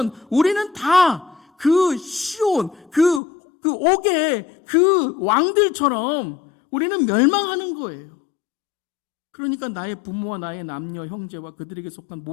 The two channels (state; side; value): drops out; right; at 3.2 s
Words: 우리는 다 그 시온, 그 옥의 그 왕들처럼 우리는 멸망하는 거예요. 그러니까 나의 부모와 나의 남녀, 형제와 그들에게 속한